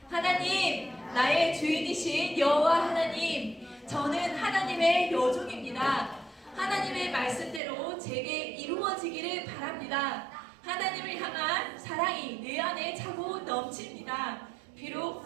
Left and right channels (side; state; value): left; drops out; at 7.6 s